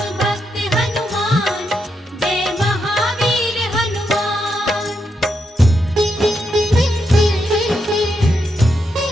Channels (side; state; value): both; normal; correlation 0.82